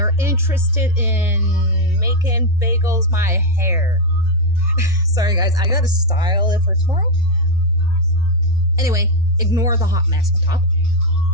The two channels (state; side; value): normal; both; correlation 0.02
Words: interested in making bagels my hair. Sorry guys, I gotta style it for tomorrow. Anyway, ignore the hot mess on top.